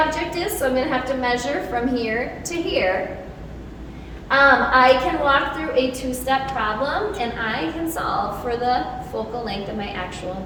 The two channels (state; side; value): identical; both; correlation 1.00